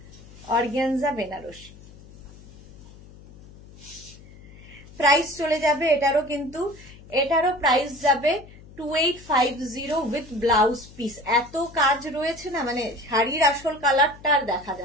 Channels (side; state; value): left; noise; hum, 20 dB below the sound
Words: অর্গানজা বেনারসি। প্রাইস চলে যাবে এটারও, কিন্তু এটারও প্রাইস যাবে 2850 উইথ ব্লাউজ পিস। এত কাজ রয়েছে না, মানে শাড়ির আসল কালারটা আর দেখা